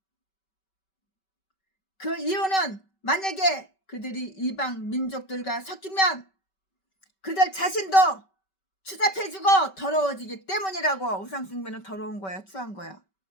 그 이유는 만약에 그들이 이방 민족들과 섞이면 그들 자신도 추잡해지고 더러워지기 때문이라고. 우상숭배는 더러운 거야. 추한 거야.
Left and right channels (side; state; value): right; late; 5.2 ms